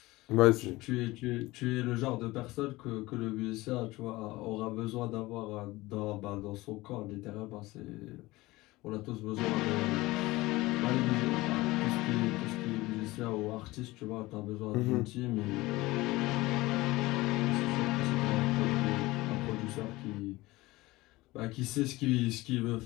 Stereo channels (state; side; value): quieter; right; 19.9 dB